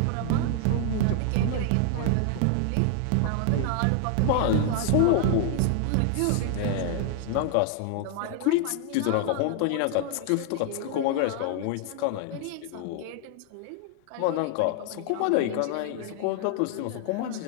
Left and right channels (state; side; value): different; both; correlation 0.00